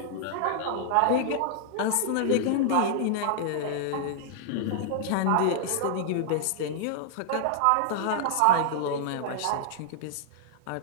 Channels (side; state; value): both; different; correlation -0.01